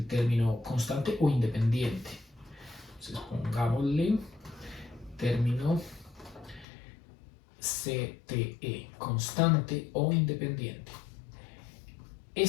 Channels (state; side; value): drops out; right; at 6.7 s